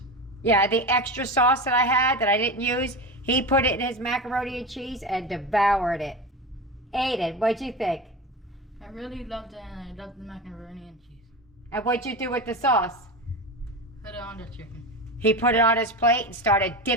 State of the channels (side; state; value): both; normal; correlation 0.24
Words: Yeah, the extra sauce that I had that I didn't use, he put it in his macaroni and cheese and devoured it. Aiden, what'd you think? I really loved it, and I loved the macaroni and cheese. And what'd you do with the sauce? Put it on the chicken. He put it on his plate and started